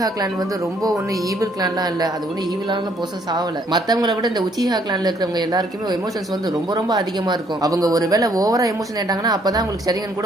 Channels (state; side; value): normal; both; correlation 0.67